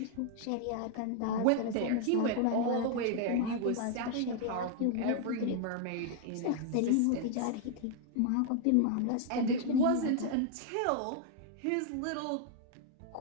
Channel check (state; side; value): different; both; correlation 0.00